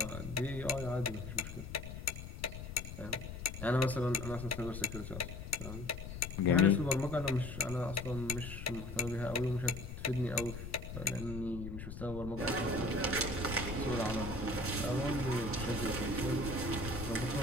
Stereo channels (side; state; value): left; noise; rumble, 9 dB below the sound